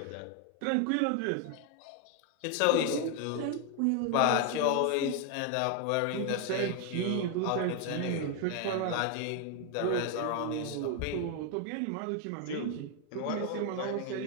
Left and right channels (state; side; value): different; both; correlation 0.01